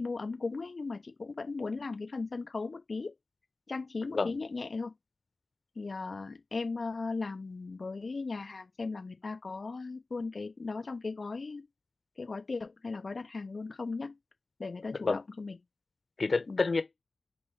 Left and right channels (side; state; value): right; quieter; 3.5 dB